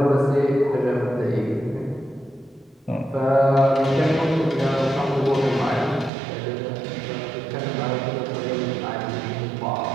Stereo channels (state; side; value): drops out; left; at 6.1 s